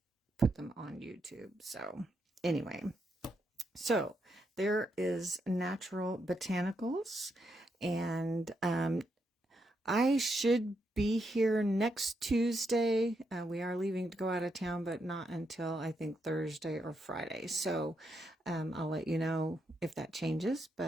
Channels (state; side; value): normal; both; correlation 0.81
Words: put them on YouTube. So anyway, so there is Natural Botanicals, and I should be here next Tuesday. We are leaving to go out of town, but not until I think Thursday or Friday. So I'll let you know if that changes.